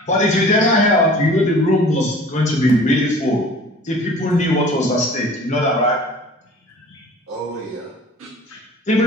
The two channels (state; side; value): normal; both; correlation 0.46